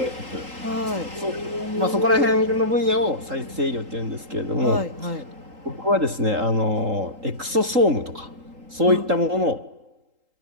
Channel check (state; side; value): late; left; 3.8 ms